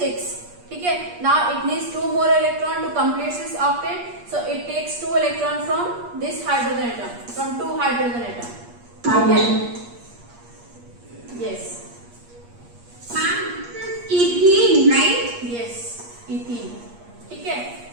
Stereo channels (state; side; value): late; left; 8.4 ms